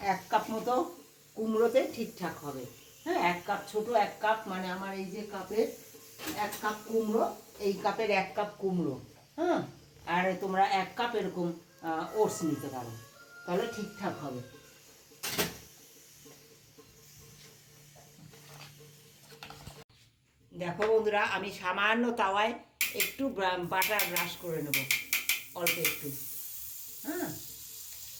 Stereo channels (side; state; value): both; identical; correlation 1.00